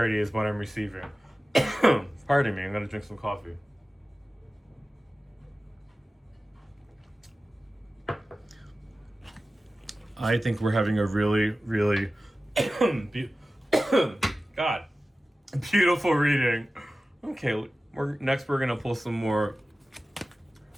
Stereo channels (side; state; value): both; normal; correlation 0.95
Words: is what I'm receiving. Pardon me, I'm gonna drink some coffee. I think we're having a really, really God, beautiful reading. Okay, we're gonna pull some more